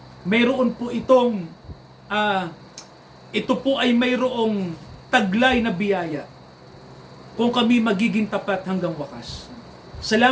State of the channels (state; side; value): identical; both; correlation 1.00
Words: mayroon po ito po ay mayroong taglay na biyaya kung kami magiging tapat hanggang wakas.